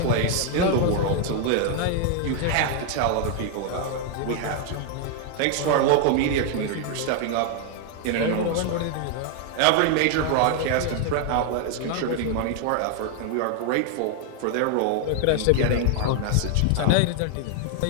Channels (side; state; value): both; different; correlation 0.00